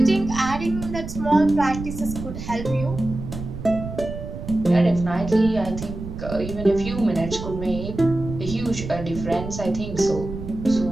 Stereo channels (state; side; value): noise; right; rumble, 9 dB below the sound